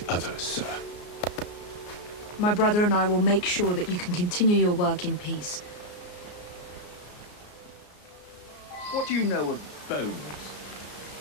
other, sir. My brother and I will make sure that you can continue your work in peace. What do you know of bones?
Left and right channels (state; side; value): late; right; 34 ms